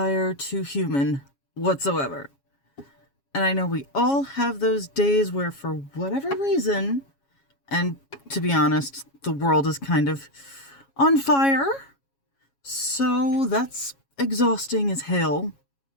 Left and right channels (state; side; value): late; right; 7.3 ms